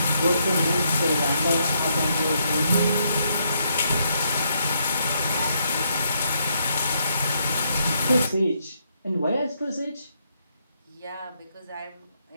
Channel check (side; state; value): both; inverted; correlation -0.76